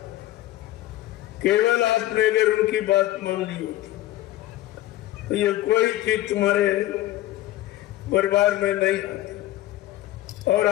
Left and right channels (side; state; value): right; quieter; 15.3 dB